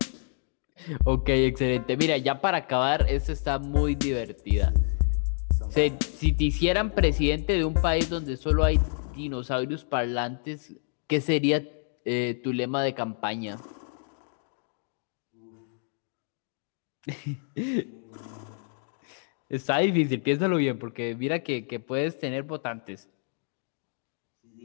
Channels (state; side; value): silent; right; 59 dB below the other